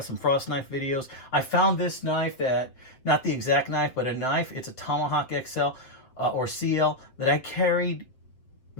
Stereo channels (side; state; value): right; late; 7.6 ms